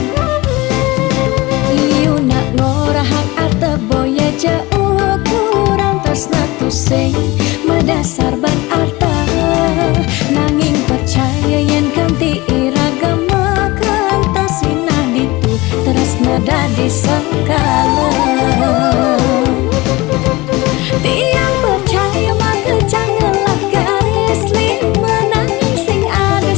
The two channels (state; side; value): quieter; right; 21.4 dB